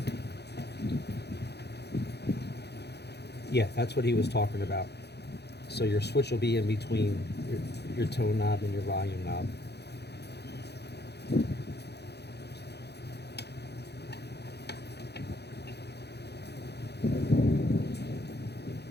Yeah, that's what he was talking about. So your switch will be in between your tone knob and your volume knob.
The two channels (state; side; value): late; right; 0.48 ms